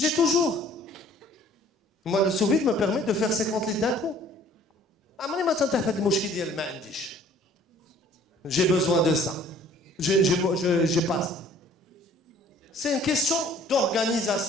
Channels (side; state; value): both; normal; correlation 0.55